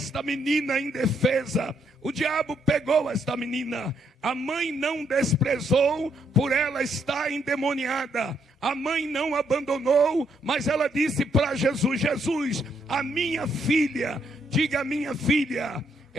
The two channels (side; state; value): both; normal; correlation 0.73